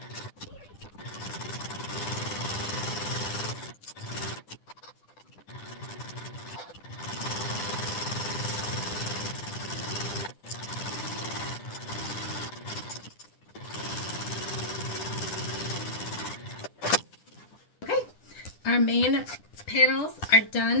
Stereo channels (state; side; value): late; right; 10 ms